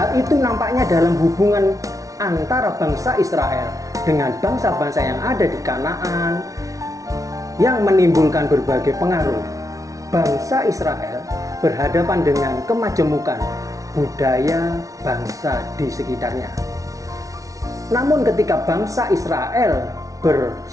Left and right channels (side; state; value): left; late; 0.17 ms